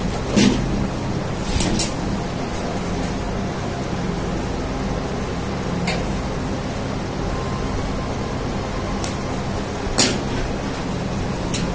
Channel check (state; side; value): identical; both; correlation 1.00